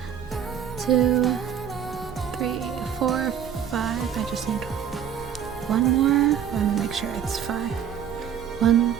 2, 3, 4, 5. I just need one more. Let me make sure it's 5. 1,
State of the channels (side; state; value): left; quieter; 8.7 dB